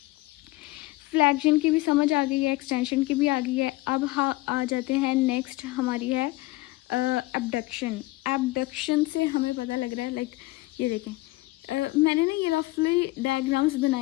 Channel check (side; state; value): right; quieter; 19.9 dB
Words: फ्लेक्शन की भी समझ आ गई है, एक्सटेंशन की भी आ गई है। अब आ जाते हैं नेक्स्ट हमारी है एबडक्शन। एबडक्शन से हमें पता लग रहा है, लाइक ये देखें, मैंने ना ये रफली डायग्राम्स